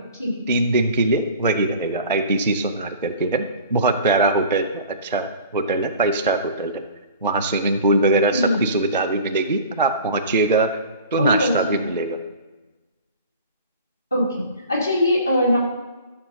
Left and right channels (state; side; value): inverted; both; correlation -0.42